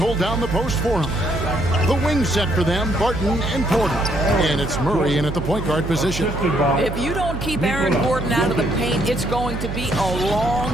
down the post for him. The wing set for them, Barton and Porter. And it's Murray in at the point guard position. If you don't keep Aaron Gordon out of the paint, it's going to be a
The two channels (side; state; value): right; noise; hum, 6 dB below the sound